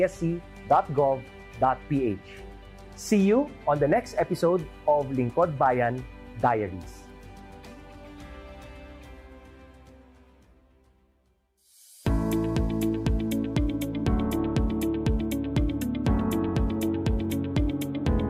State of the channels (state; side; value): identical; both; correlation 1.00